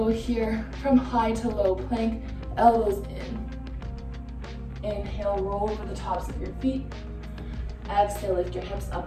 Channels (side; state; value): both; identical; correlation 1.00